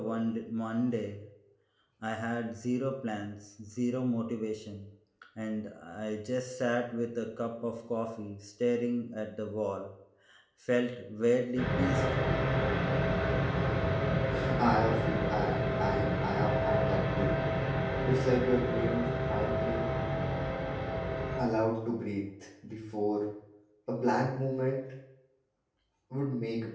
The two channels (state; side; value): identical; both; correlation 1.00